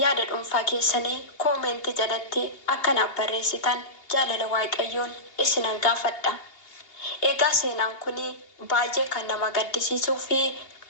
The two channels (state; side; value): late; right; 2.8 ms